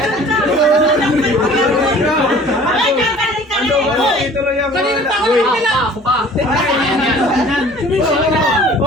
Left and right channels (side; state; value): both; normal; correlation 0.48